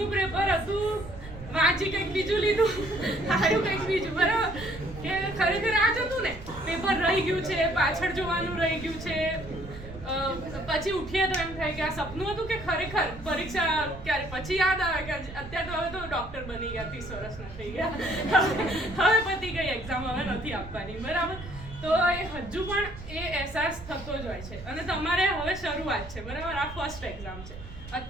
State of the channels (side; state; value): right; noise; rumble, 13 dB below the sound